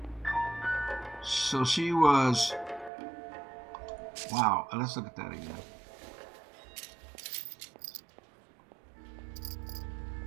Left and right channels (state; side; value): drops out; left; at 2.9 s